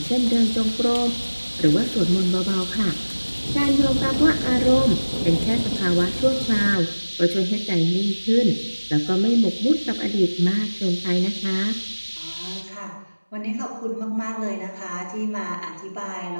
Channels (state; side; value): inverted; both; correlation -1.00